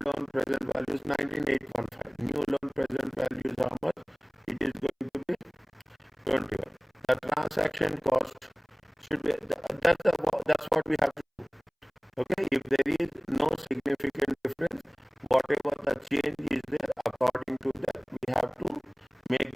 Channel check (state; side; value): identical; both; correlation 1.00